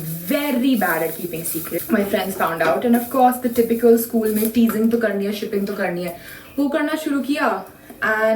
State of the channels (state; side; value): identical; both; correlation 1.00